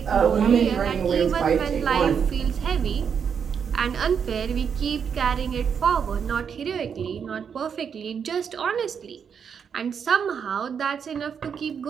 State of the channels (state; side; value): quieter; left; 7.1 dB